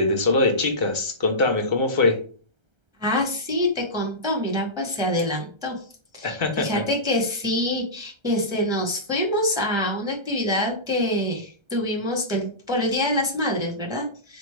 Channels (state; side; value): late; left; 1.3 ms